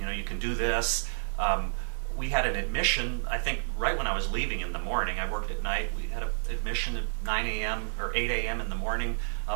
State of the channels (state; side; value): silent; left; digital silence